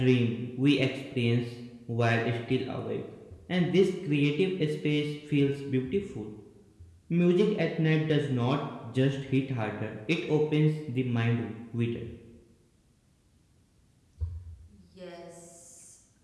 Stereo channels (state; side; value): identical; both; correlation 1.00